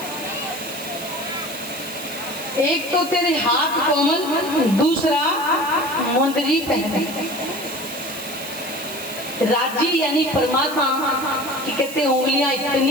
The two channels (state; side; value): noise; right; hiss, 12 dB below the sound